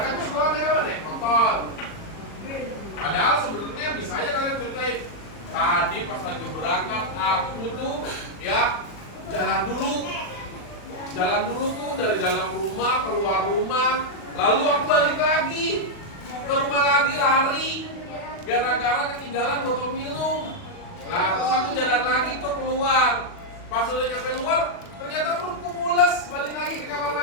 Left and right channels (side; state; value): right; late; 40 ms